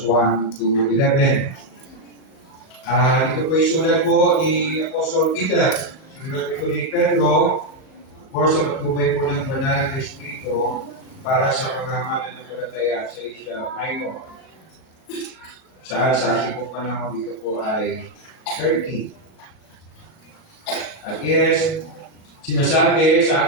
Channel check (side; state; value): right; late; 37 ms